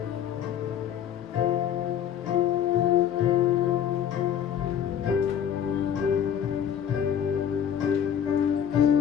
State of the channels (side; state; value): right; quieter; 9.1 dB